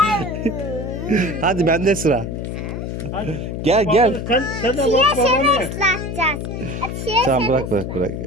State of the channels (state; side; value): noise; left; hum, 5 dB below the sound